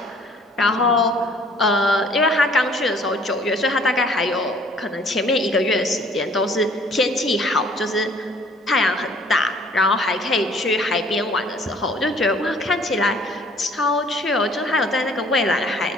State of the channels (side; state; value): both; normal; correlation 0.56